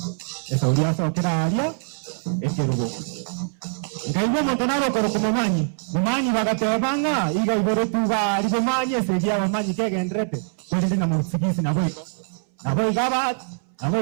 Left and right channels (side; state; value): left; silent; 63 dB below the other